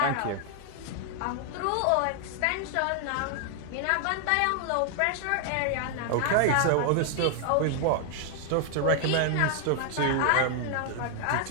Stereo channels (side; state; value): both; different; correlation 0.00